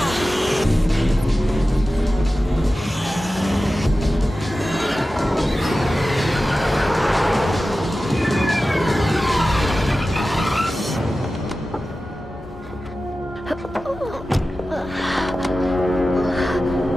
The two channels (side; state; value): both; normal; correlation 0.94